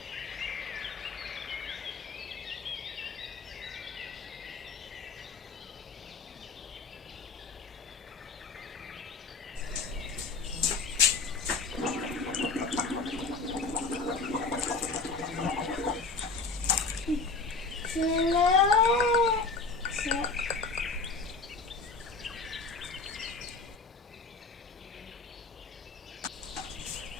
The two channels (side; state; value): right; quieter; 4.1 dB